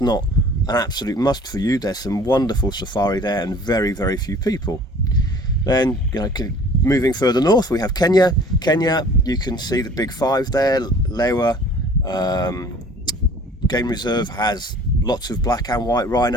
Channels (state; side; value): normal; both; correlation 0.49